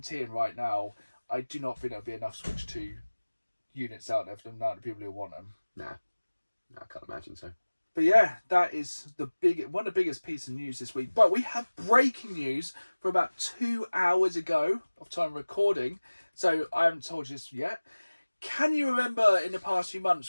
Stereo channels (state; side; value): inverted; both; correlation -1.00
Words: right now, I do not think there'll be enough Switch 2 units out there for the amount of people who want them. Nah, I can't imagine so. But yeah, that is one of the biggest pieces of news this week. But we have breaking news from about 2 hours ago of time recording. So I haven't told you this yet. Can you remember in the past few